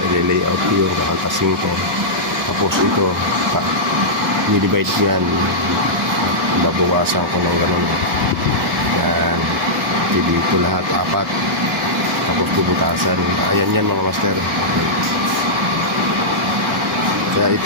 I-layout ko yun. Kakaltasin ko. Tapos ito, i-divide ko yan. Babawasan ko ng ganun. Yan. Dito lahat, 4. Tapos bubutasan. Ayan yan mga master. Kaya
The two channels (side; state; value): both; normal; correlation -0.12